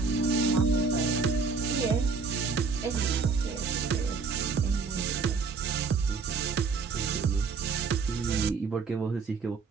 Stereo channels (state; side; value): quieter; left; 5.0 dB